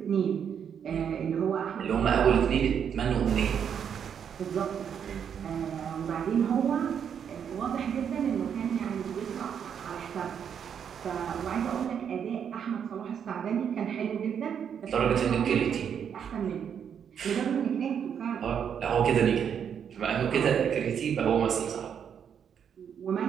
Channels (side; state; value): left; quieter; 8.0 dB